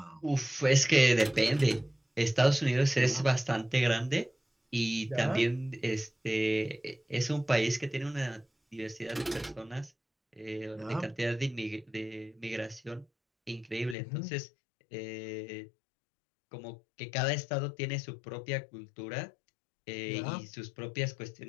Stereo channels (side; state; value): right; drops out; at 14.0 s